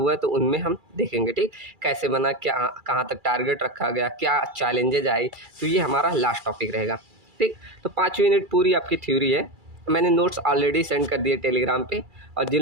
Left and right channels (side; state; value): left; late; 2.3 ms